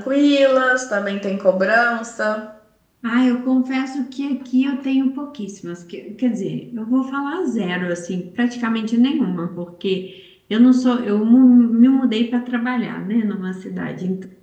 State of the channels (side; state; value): both; identical; correlation 1.00